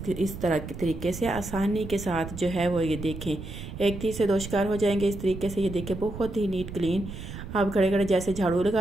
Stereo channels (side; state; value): right; noise; rumble, 10 dB below the sound